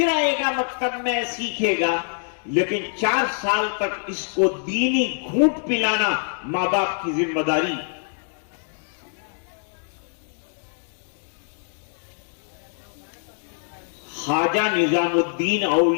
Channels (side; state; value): right; silent; digital silence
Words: آئے گا مکتب میں سیکھے گا، لیکن 4 سال تک اس کو دینی گھونٹ پلانا ماں باپ کی ذمہ داری۔ خواجہ نظام الدین